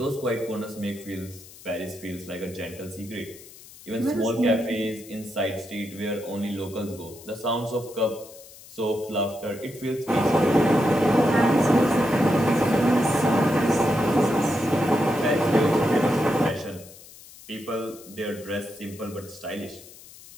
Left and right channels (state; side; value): noise; left; hiss, 20 dB below the sound